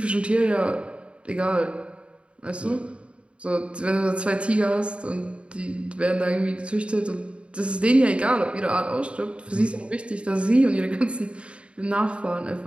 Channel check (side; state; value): left; late; 0.058 ms